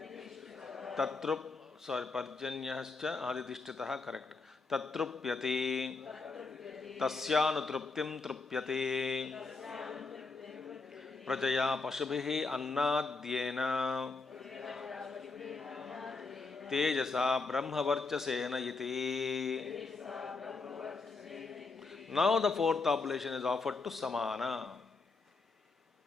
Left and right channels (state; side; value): quieter; right; 4.1 dB